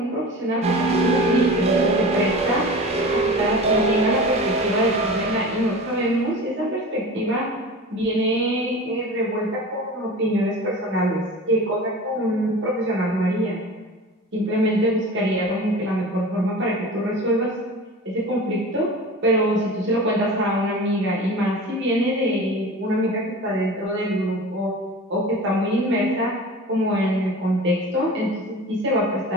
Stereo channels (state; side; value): normal; both; correlation 0.35